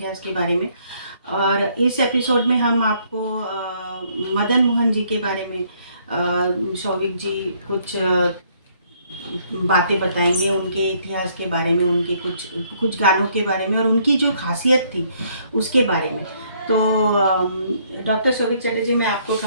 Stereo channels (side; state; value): both; inverted; correlation -0.67